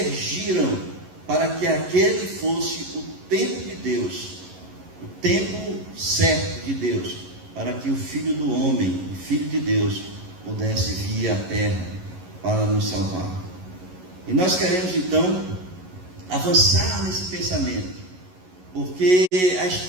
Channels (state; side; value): late; left; 11 ms